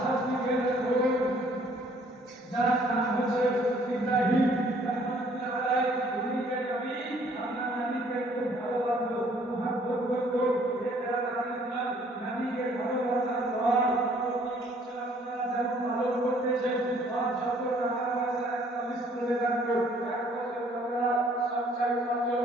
আজকে দেখুন যার নাম হচ্ছে ইব্রাহিম রাহমাতুল্লাহ আলাইহি। উনিকে নবী আপনার নবীকে খুব ভালোবাসতো, মুহাব্বত করতো। এটা রাদিয়াল্লাহ নবীকে ভালোবাসার পর আপনারা যেমন পালন করতেছেন আর যত টাকা পয়সা একটা লিস্ট করে রাখতো, এক বছর টাকা সঞ্চয় করতে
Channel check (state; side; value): normal; both; correlation 0.60